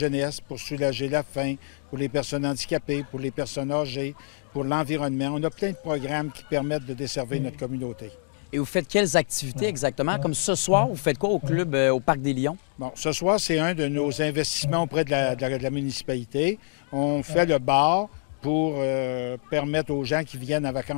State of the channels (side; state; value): right; silent; digital silence